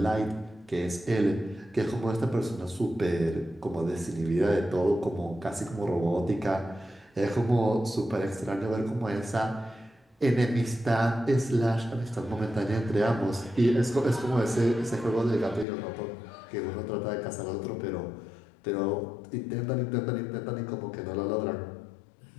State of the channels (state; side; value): drops out; right; at 15.7 s